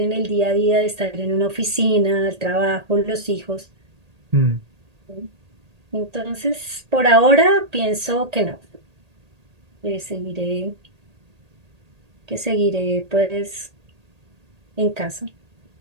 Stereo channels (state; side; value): late; left; 1.8 ms